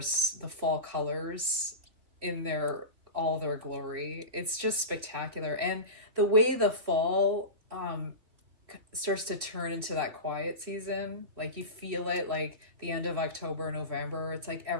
the fall colors in their all their glory. It's just spectacular, and the way the fall starts to turn into that quiet season. Like you feel it, like the end of October, November. It's like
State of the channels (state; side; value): late; left; 3.3 ms